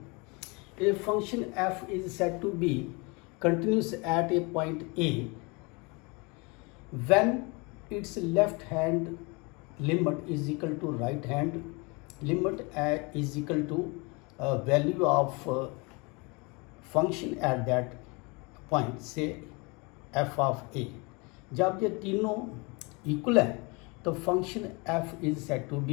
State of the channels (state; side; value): quieter; right; 28.9 dB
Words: a function f is said to be continuous at a point A when its left hand limit is equal to right hand limit is equal to value of function at that point, say f of a. जब ये तीनों इक्वल है तो function f is said to